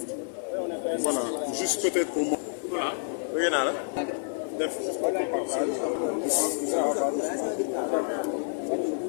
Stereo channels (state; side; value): silent; right; 59 dB below the other